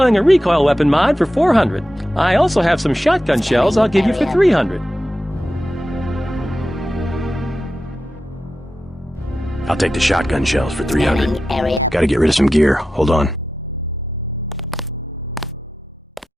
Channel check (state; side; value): normal; both; correlation 0.91